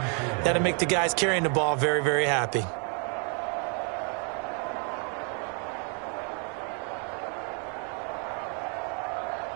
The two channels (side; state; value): left; quieter; 38.8 dB